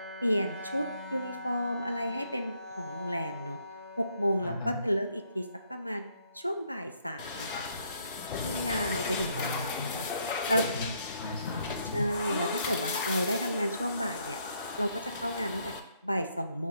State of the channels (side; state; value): both; inverted; correlation -0.72